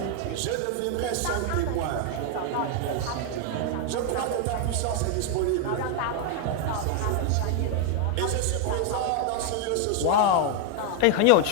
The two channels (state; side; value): different; both; correlation 0.00